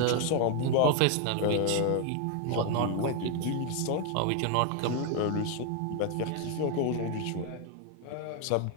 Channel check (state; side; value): different; both; correlation 0.01